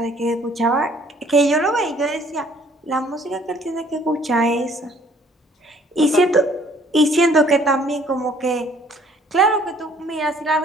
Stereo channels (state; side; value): normal; both; correlation 0.59